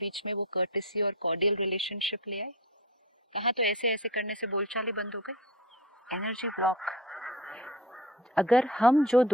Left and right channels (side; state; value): both; normal; correlation 0.30